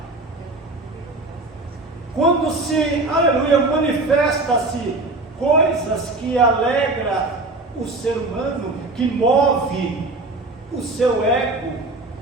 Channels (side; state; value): left; quieter; 3.1 dB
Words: Quando se, aleluia, manifesta-se coisas que alegram o ser humano, que move o seu ego,